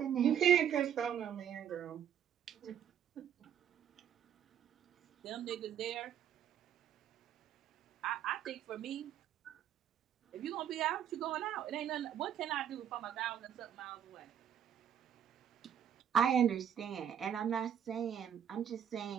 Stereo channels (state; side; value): quieter; left; 9.3 dB